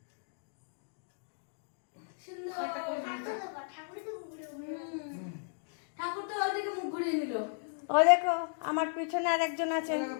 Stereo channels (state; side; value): silent; right; digital silence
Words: ঠাকুর তো ওদিকে মুখ ঘুরিয়ে নিল। ও দেখো আমার পিছনে আর একজন আছেন।